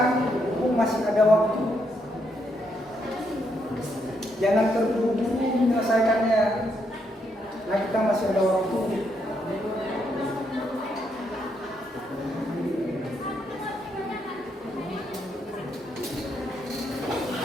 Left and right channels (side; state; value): both; normal; correlation 0.77